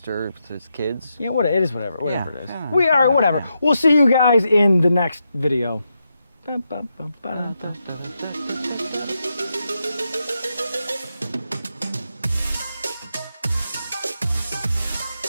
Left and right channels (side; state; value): both; inverted; correlation -0.85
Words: his kids. Yeah, what it is, whatever it is. Yeah. We are whatever. We'll see you guys in the next video.